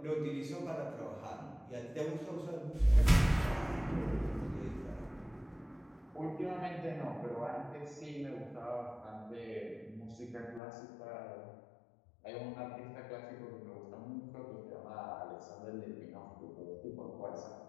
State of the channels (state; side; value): drops out; right; at 10.6 s